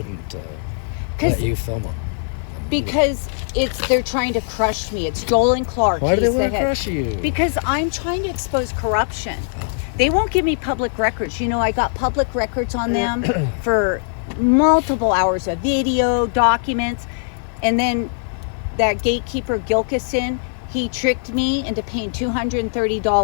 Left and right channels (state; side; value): silent; right; digital silence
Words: 'Cause- let you film them. Because they're trying to crush me. It's Joel and Clark. Why do they He's the want to head. crush you? Because I'm trying to expose corruption. They won't give me public records. You know, I got public records on them for multiple hours of video, documents, and then that gatekeeper Gilkison, he tricked me into paying